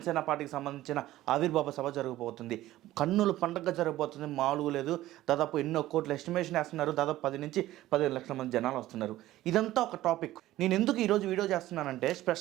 పార్టీకి సంబంధించిన ఆవిర్భావ సభ జరగబోతుంది. కన్నుల పండుగ జరగబోతుంది, మామూలుగా లేదు. దాదాపు ఎన్నో కోట్ల ఎస్టిమేషన్ వేస్తున్నారు. దాదాపు 10 నుంచి 15 లక్షల మంది జనాలు వస్తున్నారు. ఇదంతా ఒక టాపిక్. నేను ఎందుకు ఈరోజు వీడియో చేస్తున్నానంటే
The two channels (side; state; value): left; quieter; 15.3 dB